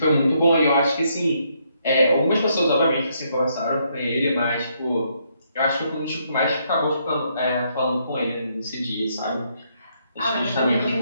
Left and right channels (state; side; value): inverted; both; correlation -0.73